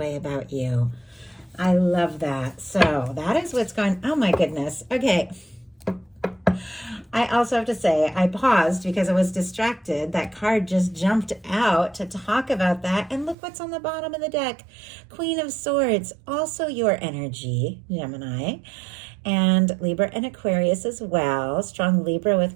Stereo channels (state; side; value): drops out; left; at 13.4 s